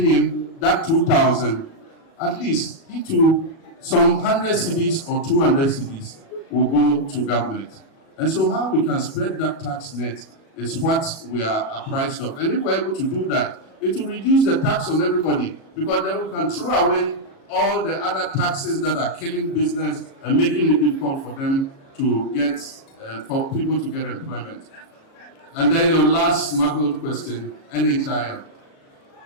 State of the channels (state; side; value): late; right; 37 ms